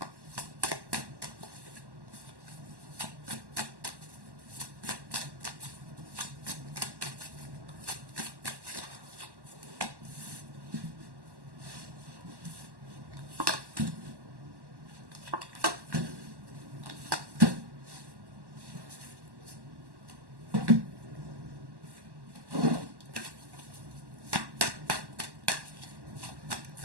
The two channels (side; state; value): left; late; 1.1 ms